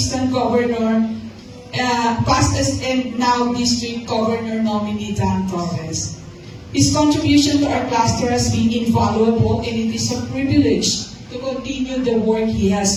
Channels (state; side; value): identical; both; correlation 1.00